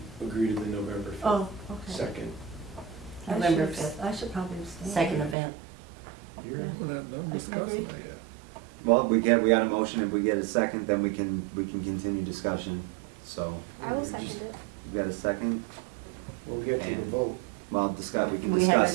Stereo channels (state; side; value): drops out; left; at 5.4 s